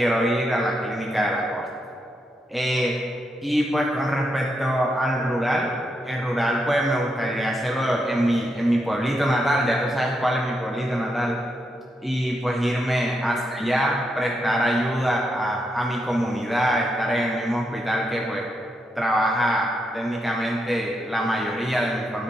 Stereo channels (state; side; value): normal; both; correlation 0.82